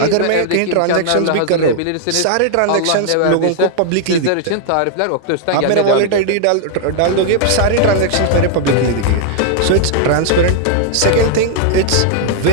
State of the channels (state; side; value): different; both; correlation -0.01